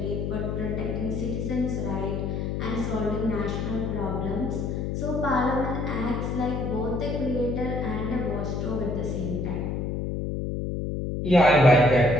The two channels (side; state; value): left; noise; hum, 2 dB below the sound